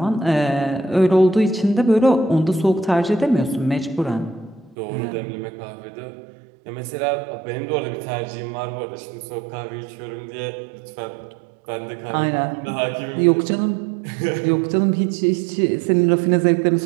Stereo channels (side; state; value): left; drops out; at 4.8 s